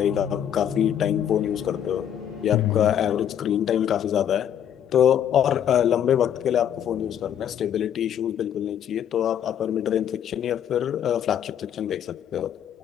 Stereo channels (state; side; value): quieter; right; 9.7 dB